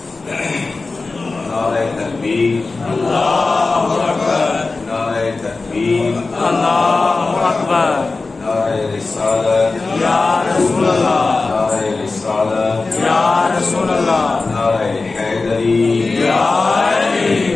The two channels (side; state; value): right; quieter; 3.7 dB